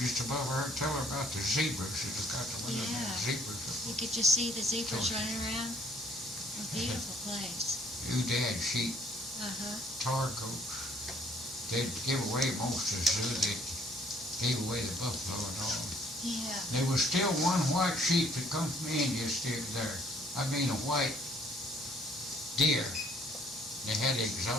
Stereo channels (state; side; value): normal; both; correlation 0.62